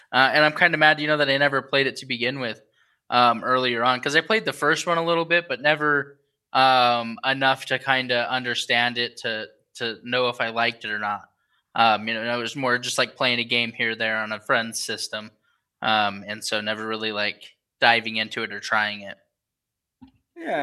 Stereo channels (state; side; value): identical; both; correlation 1.00